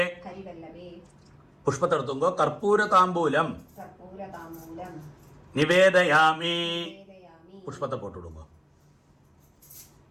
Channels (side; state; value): both; identical; correlation 1.00